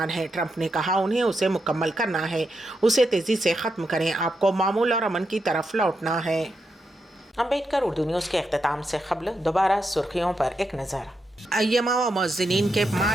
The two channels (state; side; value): normal; both; correlation 0.84